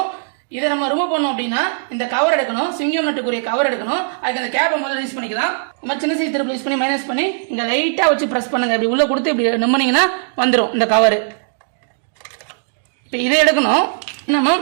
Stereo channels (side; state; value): left; silent; digital silence